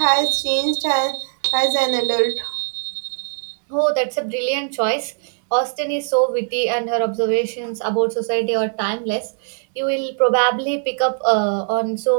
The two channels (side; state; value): left; silent; digital silence